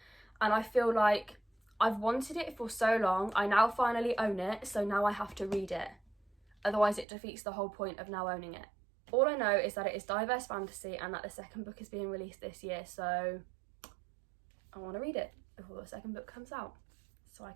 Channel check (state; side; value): drops out; left; at 7.1 s